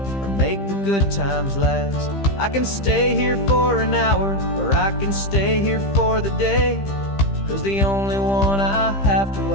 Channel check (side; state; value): right; late; 15 ms